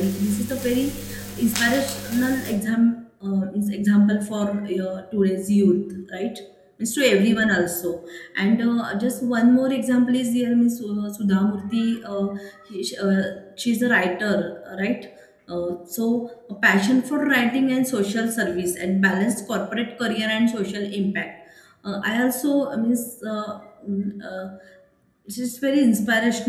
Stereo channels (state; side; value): identical; both; correlation 1.00